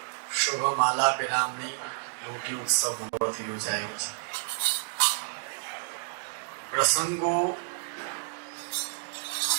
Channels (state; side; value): silent; left; 58 dB below the other